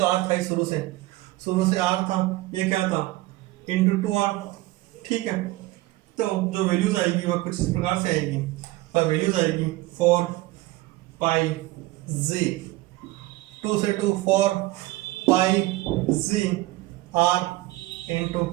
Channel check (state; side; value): quieter; left; 18.9 dB